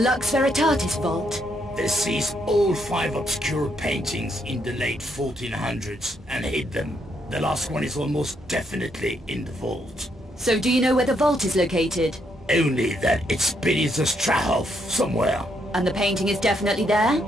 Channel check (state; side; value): normal; both; correlation 0.75